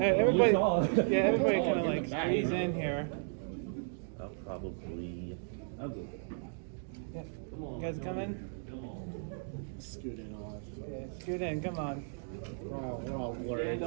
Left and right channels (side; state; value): left; silent; digital silence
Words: Everybody, you're tall. everybody You're tall. kind of like squeeze in here. I'll go. Yeah. Come on. You guys come in? Come on. Scoot in on us. Yeah, scoot in, come on. We're all blurred. Stand We're